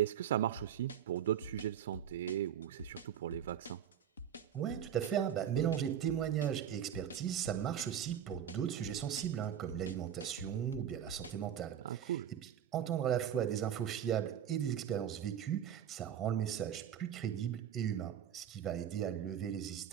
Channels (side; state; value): left; quieter; 9.4 dB